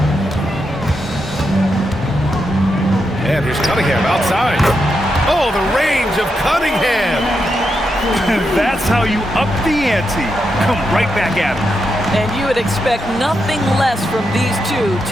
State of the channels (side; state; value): both; normal; correlation 0.84